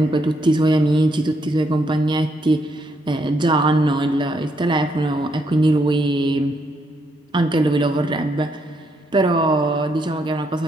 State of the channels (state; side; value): normal; both; correlation 0.76